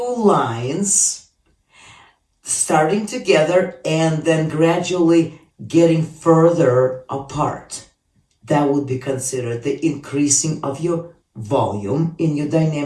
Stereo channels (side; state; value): both; identical; correlation 1.00